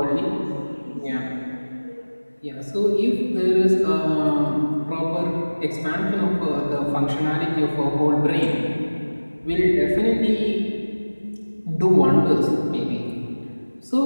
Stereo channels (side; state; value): both; inverted; correlation -1.00